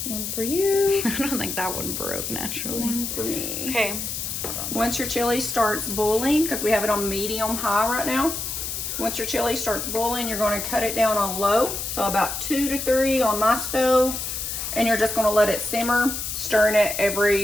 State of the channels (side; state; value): left; noise; hiss, 4 dB below the sound